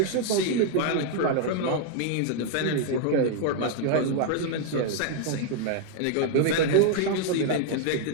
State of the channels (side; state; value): both; different; correlation 0.00